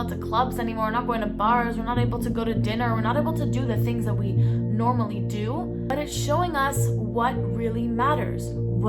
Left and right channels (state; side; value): identical; both; correlation 1.00